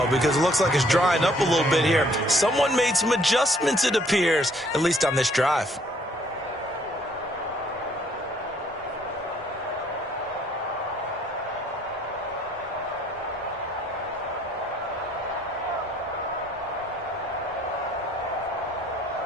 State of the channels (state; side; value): normal; both; correlation 0.63